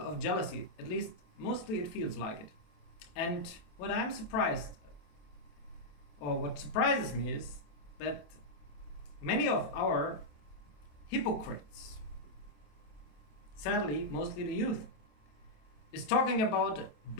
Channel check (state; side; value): late; right; 27 ms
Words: jealousy, at least mostly it feels like it. And what surprises me is that many of our hypocrites, sadly mostly the youth, is talking about